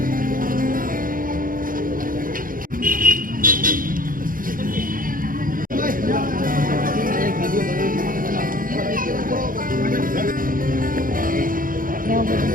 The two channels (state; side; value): late; left; 0.40 ms